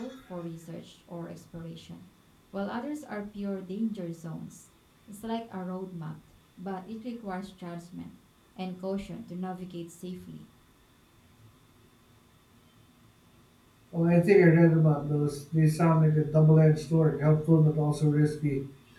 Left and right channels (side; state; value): both; identical; correlation 1.00